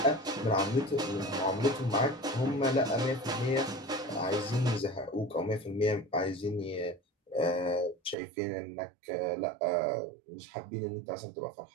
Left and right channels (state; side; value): drops out; left; at 8.2 s